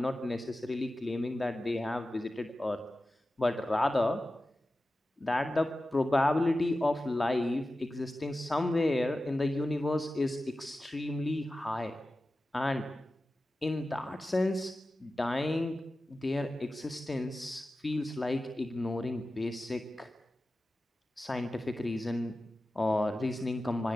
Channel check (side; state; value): both; normal; correlation 0.94